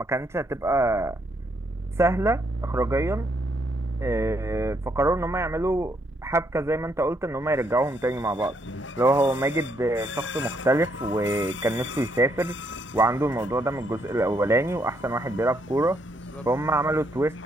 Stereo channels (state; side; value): normal; both; correlation 0.73